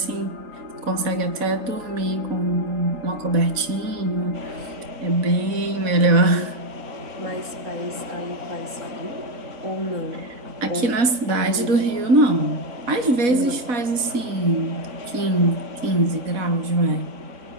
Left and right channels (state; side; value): late; left; 4.1 ms